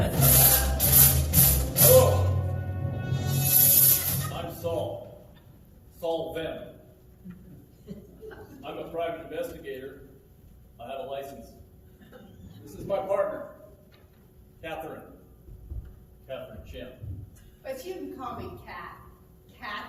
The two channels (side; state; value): both; identical; correlation 1.00